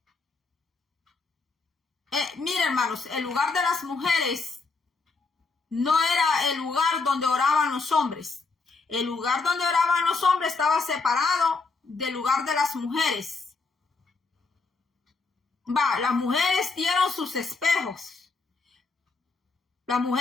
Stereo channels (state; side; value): quieter; right; 4.1 dB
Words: miren, hermanos, el lugar de las mujeres no era el lugar donde oraban los hombres. El lugar donde oraban los hombres estaba separado del lugar de las mujeres. Las mujeres dieron sus espejos. Las